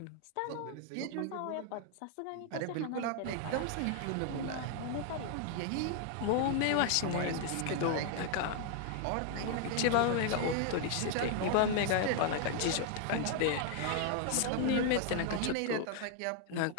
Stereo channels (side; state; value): both; different; correlation 0.00